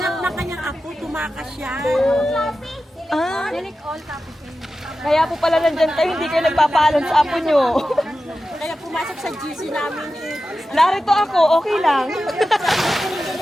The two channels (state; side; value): normal; both; correlation 0.93